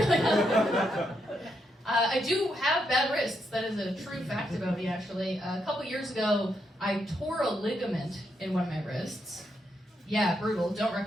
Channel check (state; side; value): normal; both; correlation 0.80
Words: I do have bad wrists. That is a true fact about me, actually. A couple years ago, I tore a ligament in one of my wrists. Yeah, brutal. Don't